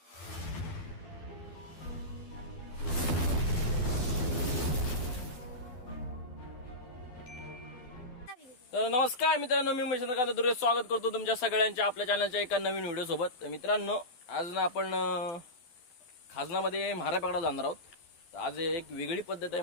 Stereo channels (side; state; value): right; late; 12 ms